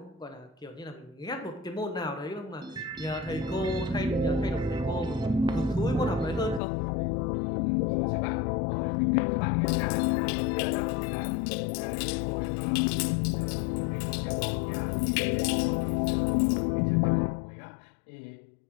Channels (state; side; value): drops out; right; at 6.6 s